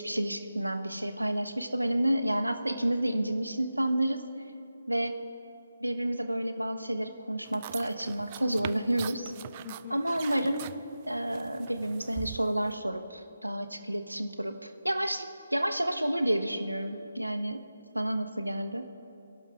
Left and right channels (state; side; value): inverted; both; correlation -0.94